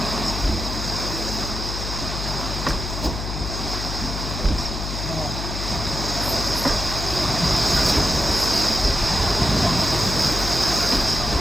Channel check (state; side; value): noise; left; hum, 5 dB below the sound